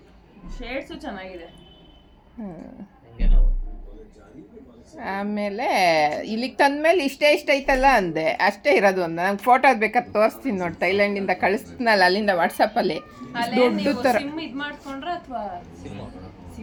ಶೇಡ್ಸು ಚೆನ್ನಾಗಿದೆ. ಆಮೇಲೆ ಇಲ್ಲಿಗೆ ತಂದ್ಮೇಲೆ ಇಷ್ಟೇ ಇಷ್ಟ ಐತಲ್ಲ ಅಂದೆ. ಅಷ್ಟೇ ಇರೋದು ಒಂದು. ನಂಗೆ ಫೋಟೋ ಬೇಕಾದ್ರೆ ತೋರಿಸ್ತೀನಿ ನೋಡಿ. ಥೈಲ್ಯಾಂಡಿಂದ ಕಳಿಸ್ತೀನಲ್ಲ ಅಲ್ಲಿಂದ ವಾಟ್ಸಪ್ಪಲ್ಲಿ. ದೊಡ್ಡ ಥರ ಸಿಮ್ ಇದು ಮಾಡ್ಕೊಂಡ್ರೆ ಅಥವಾ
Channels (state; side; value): identical; both; correlation 1.00